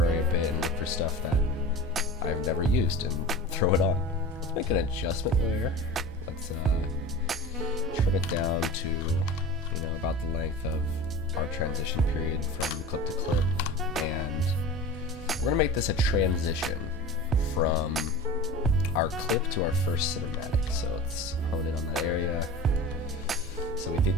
a bit and look for stuff that I've never used and throw it on. Let's make an adjustment layer. Let's trim it down to, you know, about the length of our transition period from clip to clip, and we're gonna make this a transition from our clip to our first cinematic. So let's hone in on that area. So we think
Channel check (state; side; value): normal; both; correlation 0.34